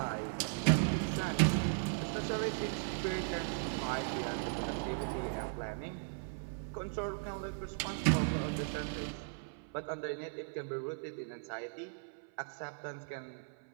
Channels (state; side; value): silent; left; 53 dB below the other